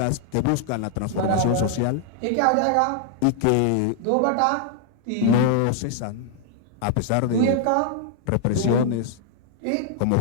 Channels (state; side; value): different; both; correlation 0.00